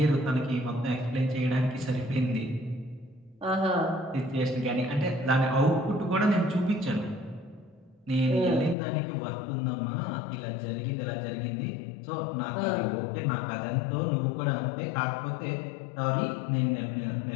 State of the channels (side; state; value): right; drops out; at 8.8 s